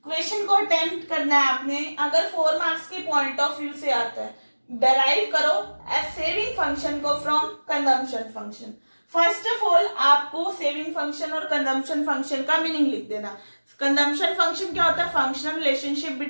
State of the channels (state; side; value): inverted; both; correlation -1.00